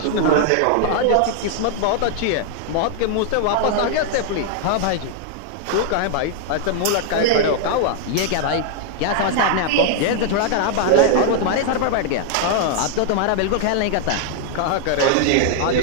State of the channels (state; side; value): different; both; correlation 0.00